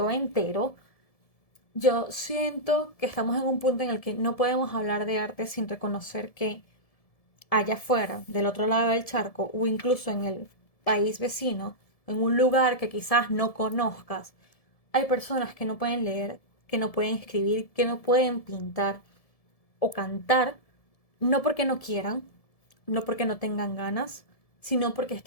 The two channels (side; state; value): right; late; 1.7 ms